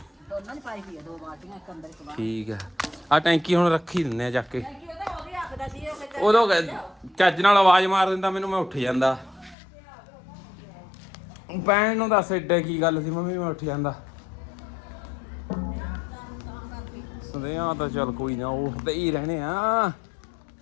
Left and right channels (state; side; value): drops out; right; at 9.6 s